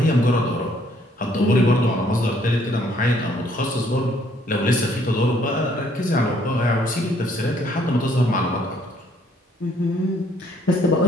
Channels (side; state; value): both; normal; correlation 0.65